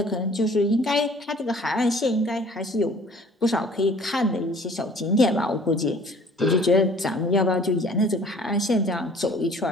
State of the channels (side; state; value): both; normal; correlation 0.52